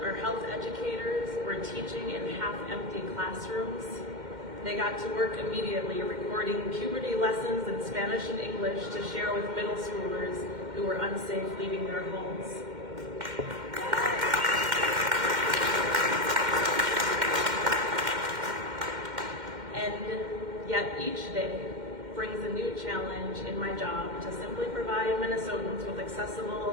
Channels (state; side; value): late; left; 2.1 ms